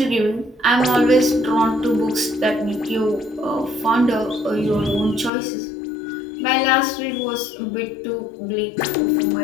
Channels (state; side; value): drops out; right; at 5.3 s